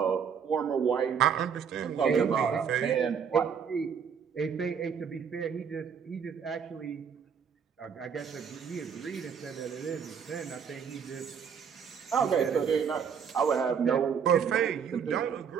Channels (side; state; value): left; quieter; 7.1 dB